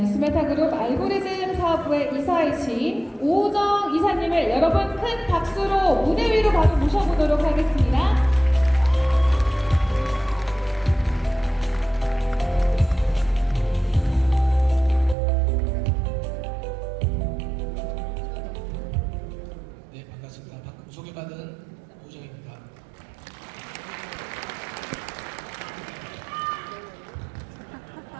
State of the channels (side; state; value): left; drops out; at 15.2 s